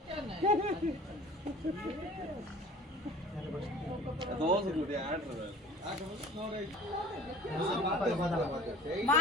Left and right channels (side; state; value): both; normal; correlation 0.46